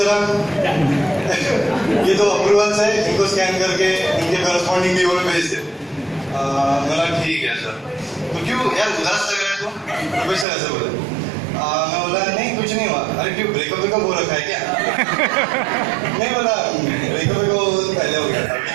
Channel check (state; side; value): drops out; left; at 10.5 s